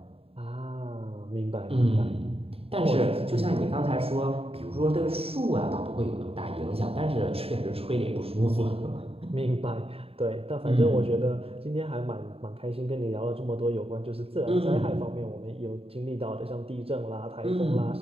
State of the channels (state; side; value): late; left; 0.28 ms